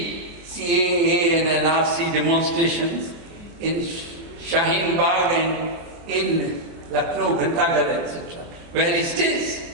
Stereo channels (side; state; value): left; late; 24 ms